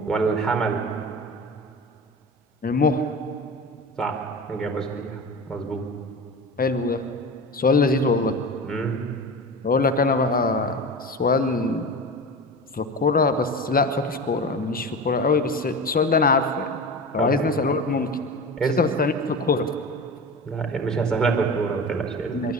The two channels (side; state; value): both; normal; correlation 0.30